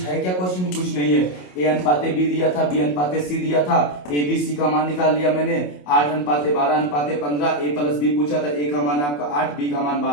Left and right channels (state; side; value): late; right; 27 ms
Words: है क्या क्वेश्चन में, कुछ नहीं है। ए अनुपाते बी दिया था, बी अनुपाते सी दिया था, ए बी सी का मान निकाल लिया मैंने, 8 अनुपाते 12 अनुपाते 15, ए प्लस बी पूछा था, ए का मान आपका 8, बी का मान